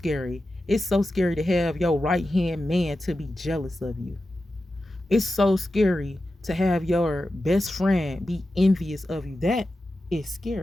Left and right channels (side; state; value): both; normal; correlation 0.92